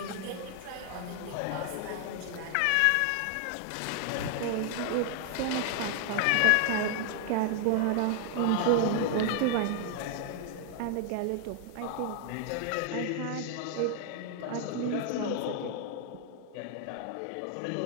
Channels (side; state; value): both; different; correlation 0.00